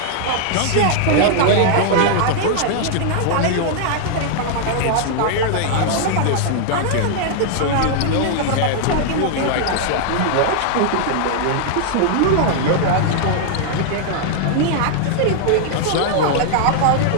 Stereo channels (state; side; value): different; both; correlation -0.01